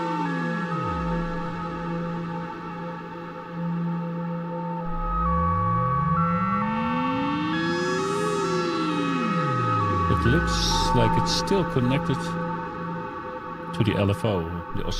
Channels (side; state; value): both; identical; correlation 1.00